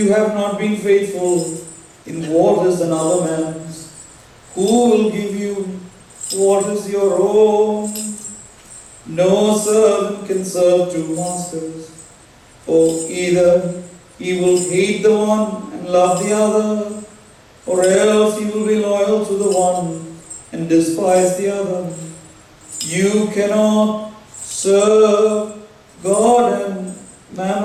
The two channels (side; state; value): both; identical; correlation 1.00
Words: have not been faithful in what is another man's, who will give you what is your own? No servant can serve two masters, for either he will hate the one and love the other, or else he will be loyal to the one and despise the other. You cannot serve God and